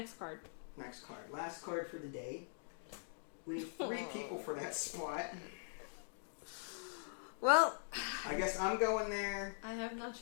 card. Next card. Last card for the day. We need 3 people for that spot. Well... I guess I'm going there. I have no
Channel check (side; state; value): right; silent; digital silence